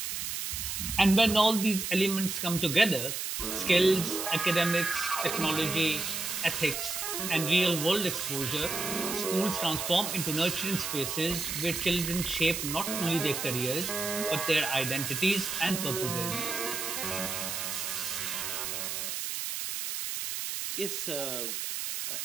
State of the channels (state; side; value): noise; right; hiss, 3 dB below the sound